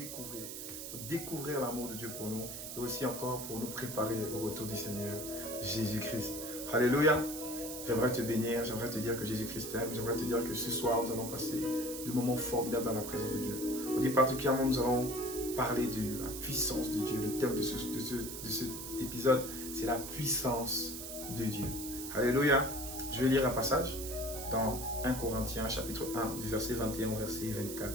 pour découvrir l'amour de Dieu pour nous et aussi encore pour nous préparer au retour du Seigneur Jésus-Christ. Alléluia! J'aimerais te bénir, j'aimerais te dire que Jésus-Christ t'aime, j'aimerais te dire que ce soir nous allons passer de moments formidables dans la présence de Dieu. Aujourd'hui particulièrement nous allons parler de la puissance de Dieu. Le thème de cet épisode, c'est la puissance de Dieu. Alléluia! Je vais lire un passage dans 1 Corinthiens chapitre 1 du verset 21 au verset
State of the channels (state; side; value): noise; right; hiss, 8 dB below the sound